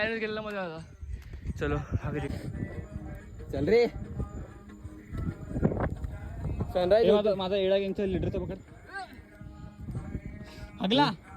केलेला मजा आला. चलो आगे चल रे. सनराइज. माझा एडा गँगचा लिटरचा पकड. अगला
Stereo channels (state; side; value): identical; both; correlation 1.00